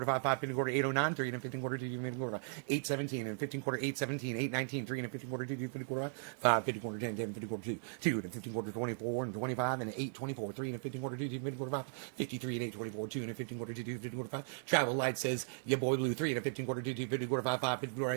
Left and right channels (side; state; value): left; silent; digital silence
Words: 5, 5, 15 quarter, 809. 3 and a 15 quarter, 2, 15 quarter, 817, and 15 quarter, 817, 819. 3 and a 15 quarter, 2, 15 quarter, 5, 15 quarter, 10, 10, 15 quarter, 2. 2 and a 15 quarter, 24, and 25, and 824. 3 and a 15 quarter, 2, 15 quarter, 5, 53, and 824. 2 and a 15 quarter, 2, 15 quarter, 5. Travel Light says, your boy Blue, 3 and a 15 quarter, 2, 50 quarter, 5, 5, 50 quarter. I